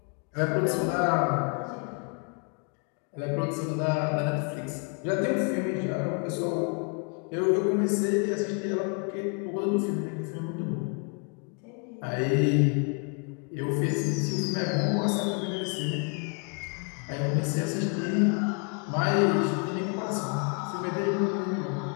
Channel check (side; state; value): right; quieter; 37.1 dB